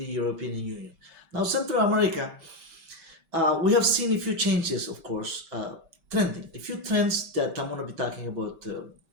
European Union. Now, Central America, we have seen a few changes, of course, trending, a few trends that I'm going to be talking about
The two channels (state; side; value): late; left; 5.2 ms